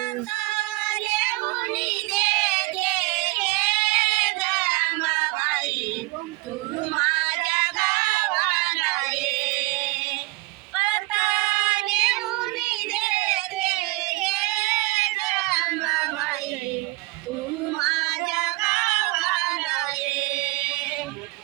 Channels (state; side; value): quieter; left; 22.5 dB